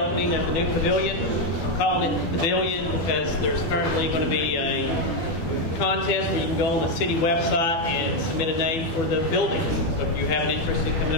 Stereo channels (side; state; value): right; late; 12 ms